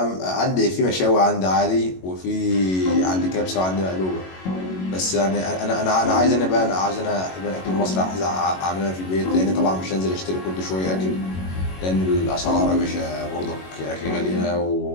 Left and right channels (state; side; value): late; right; 22 ms